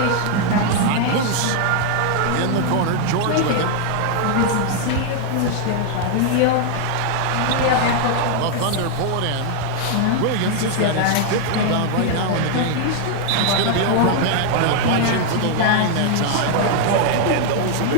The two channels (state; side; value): different; both; correlation 0.00